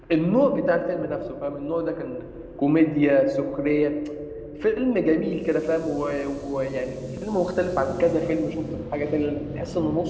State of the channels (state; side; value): identical; both; correlation 1.00